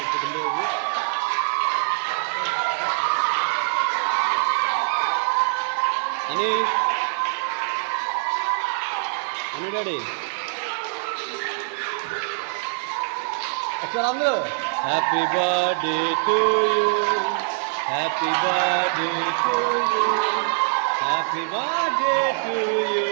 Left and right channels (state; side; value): silent; left; 63 dB below the other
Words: పుట్టినరోజు. Honey honey daddy ఒకసారి అందరూ happy birthday to you, happy birthday to you, happy birthday to you